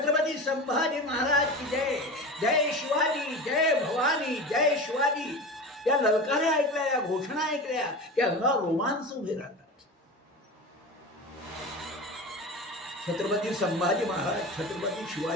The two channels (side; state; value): both; normal; correlation 0.29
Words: संभाजी महाराज की जय, जय शिवाजी, जय भवानी, जय शिवाजी. या ललकाऱ्या ऐकल्या, या घोषणा ऐकल्या की अंगावर रोमांच उभे राहतात. छत्रपती संभाजी महाराज, छत्रपती